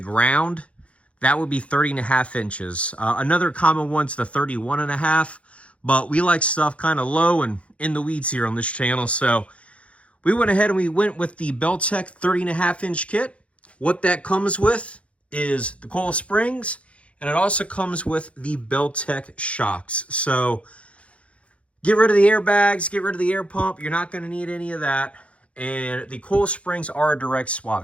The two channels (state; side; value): late; right; 0.062 ms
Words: that would be 30.5 inches. Another common one's the 31.5, but we like stuff kind of low and in the weeds here on this channel. So we went ahead and we went with the Beltac 30.5-inch kit. What that comes with is the coil springs, and it also comes with the Beltac shocks. So get rid of the airbags, get rid of the air pump. You're not going to need any of that. And the coil springs are a direct